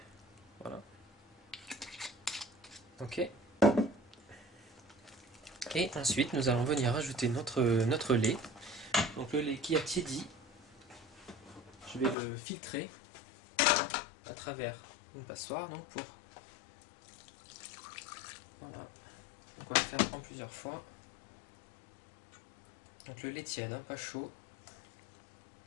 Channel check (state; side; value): drops out; right; at 12.2 s